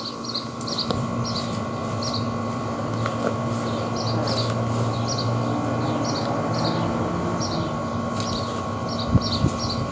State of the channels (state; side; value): identical; both; correlation 1.00